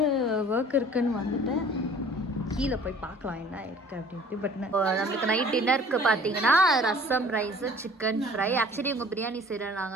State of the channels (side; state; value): both; normal; correlation 0.49